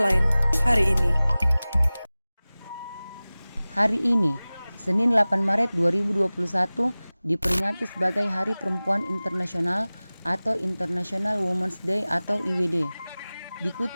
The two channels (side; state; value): both; inverted; correlation -0.99